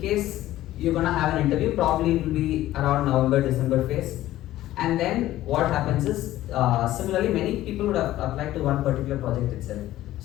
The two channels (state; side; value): quieter; right; 14.7 dB